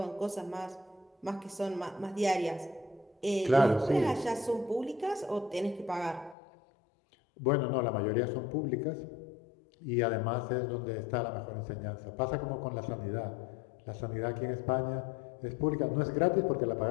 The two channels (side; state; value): right; drops out; at 6.4 s